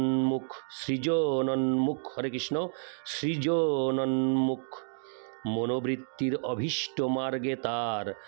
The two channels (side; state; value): left; silent; digital silence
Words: হরে কৃষ্ণ সৃজনোন্মুখ মনোবৃত্তির অভীষ্ট মার্গে তার